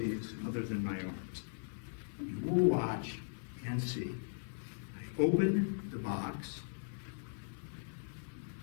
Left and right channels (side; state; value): right; silent; 52 dB below the other